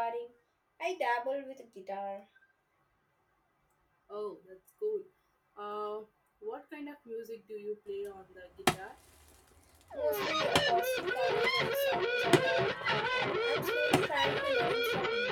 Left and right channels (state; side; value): identical; both; correlation 1.00